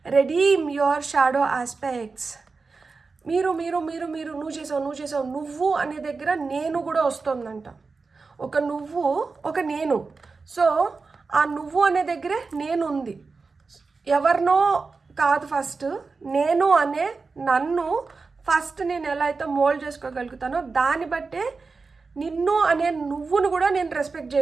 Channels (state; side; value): quieter; left; 4.3 dB